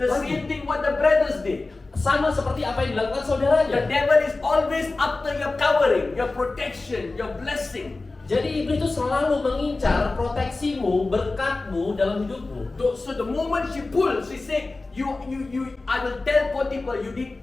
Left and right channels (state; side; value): quieter; right; 3.4 dB